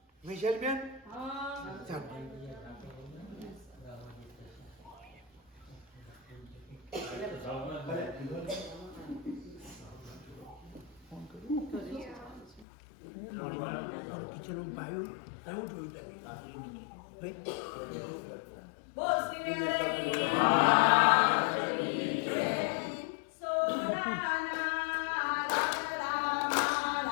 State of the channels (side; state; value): right; drops out; at 12.7 s